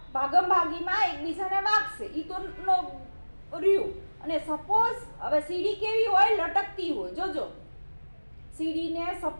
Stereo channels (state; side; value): inverted; both; correlation -1.00